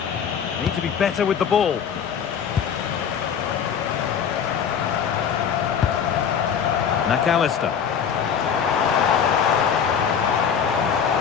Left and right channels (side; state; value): right; quieter; 7.6 dB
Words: Need to be better with the ball. McAllister.